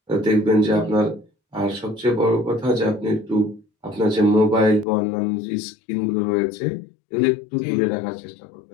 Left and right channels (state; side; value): drops out; right; at 4.9 s